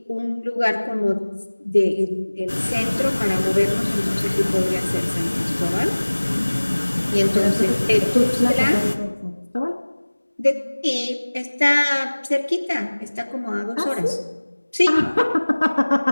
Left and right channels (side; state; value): both; inverted; correlation -1.00